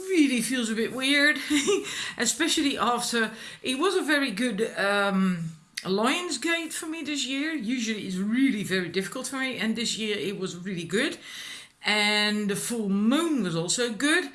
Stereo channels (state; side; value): identical; both; correlation 1.00